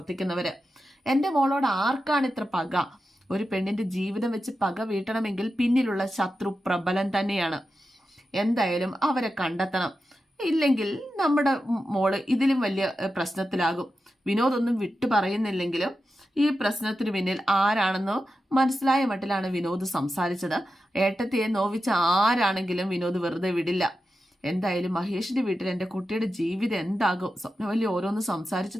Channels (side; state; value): both; normal; correlation 0.90